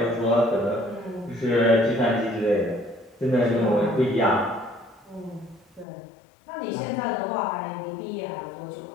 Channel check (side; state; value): right; drops out; at 5.9 s